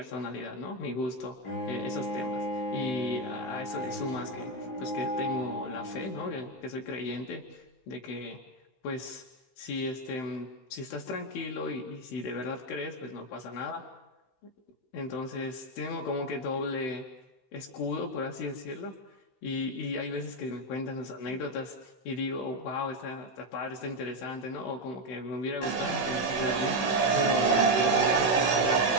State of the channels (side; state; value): right; late; 16 ms